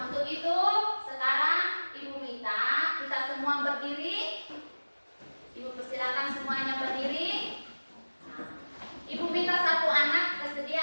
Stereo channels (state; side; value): inverted; both; correlation -1.00